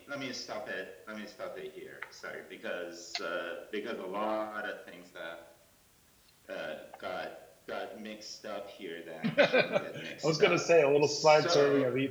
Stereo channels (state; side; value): identical; both; correlation 1.00